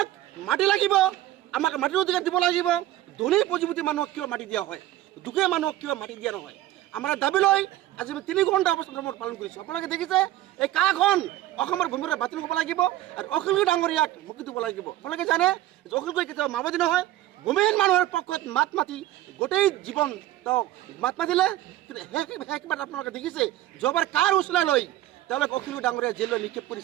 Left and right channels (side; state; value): left; quieter; 14.6 dB